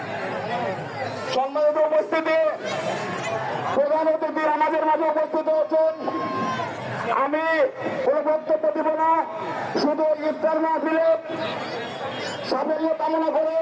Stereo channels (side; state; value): both; identical; correlation 1.00